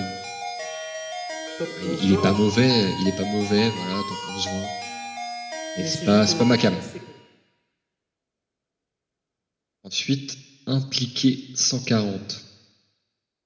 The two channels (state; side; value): identical; both; correlation 1.00